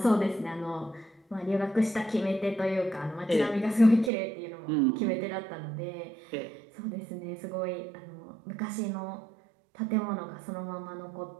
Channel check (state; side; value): drops out; left; at 4.1 s